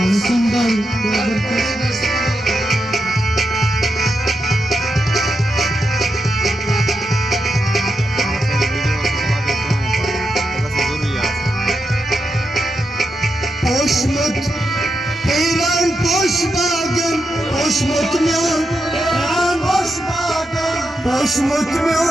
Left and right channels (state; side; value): normal; both; correlation 0.86